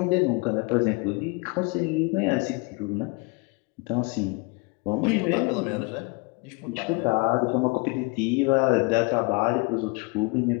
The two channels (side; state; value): right; quieter; 28.6 dB